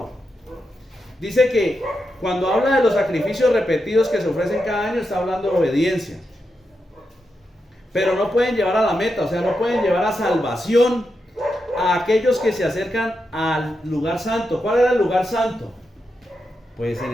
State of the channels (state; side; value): normal; both; correlation 0.87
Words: Dice que cuando habla de los sacrificios repetidos que se ofrecen cada año, está hablando de obediencia. Pero no pueden llevar a la meta, o sea, no pueden llevar a salvación a aquellos que se acercan al lugar santo. ¿Cuál era el lugar santo? Pues